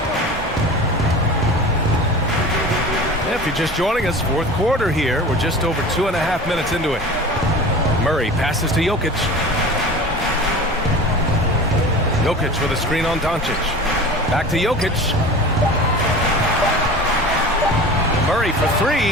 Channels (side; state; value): both; normal; correlation 0.36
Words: If you're just joining us, fourth quarter here. We're just over 2.5 minutes into it. Murray passes to Jokic. Jokic with a screen on Doncic. Back to Jokic. Murray for